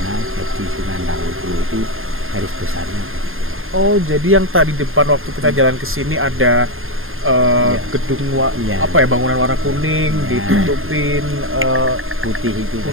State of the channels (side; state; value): left; late; 0.60 ms